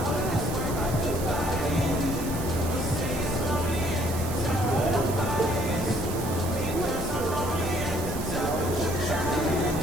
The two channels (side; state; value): right; noise; hiss, 11 dB below the sound